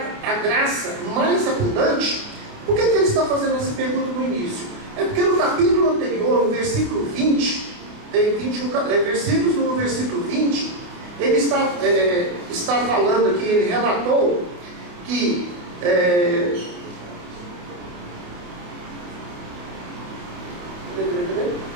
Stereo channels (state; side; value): late; left; 28 ms